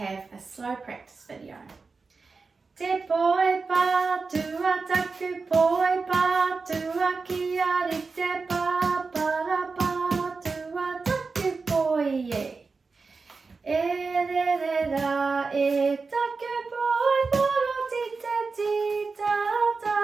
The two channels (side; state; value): left; quieter; 4.4 dB